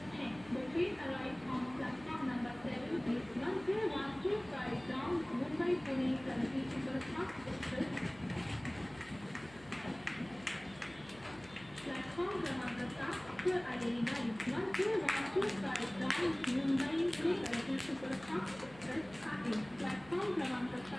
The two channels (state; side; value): noise; left; hum, 21 dB below the sound